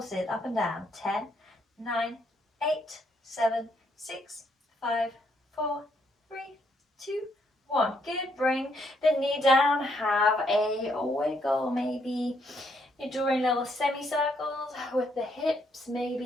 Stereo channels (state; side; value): normal; both; correlation 0.73